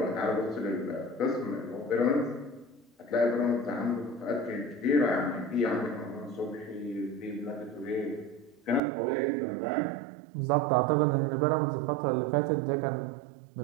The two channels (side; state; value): left; drops out; at 8.8 s